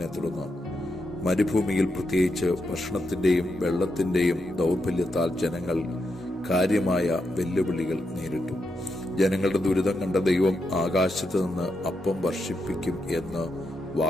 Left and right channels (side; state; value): both; normal; correlation 0.84